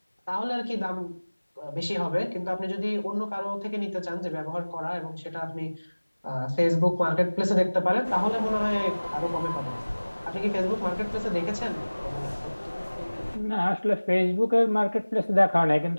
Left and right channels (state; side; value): inverted; both; correlation -1.00